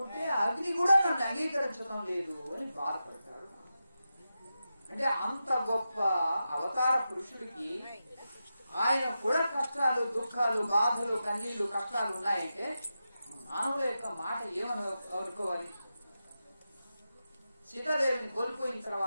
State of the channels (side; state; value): both; inverted; correlation -0.90